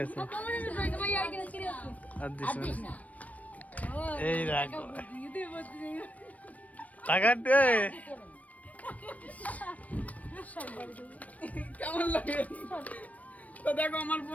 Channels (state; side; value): late; right; 0.069 ms